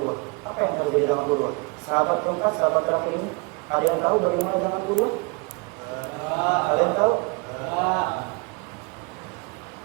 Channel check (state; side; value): quieter; left; 30.0 dB